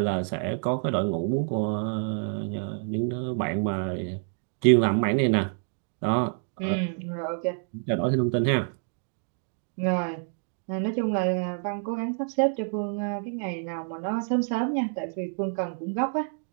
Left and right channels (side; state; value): left; silent; 59 dB below the other